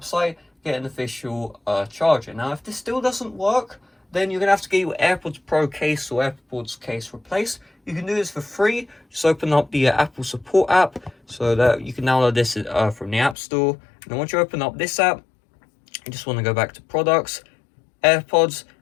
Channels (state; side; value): drops out; right; at 13.4 s